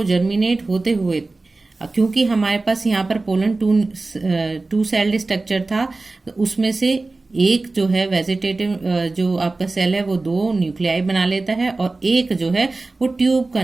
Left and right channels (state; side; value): quieter; left; 3.4 dB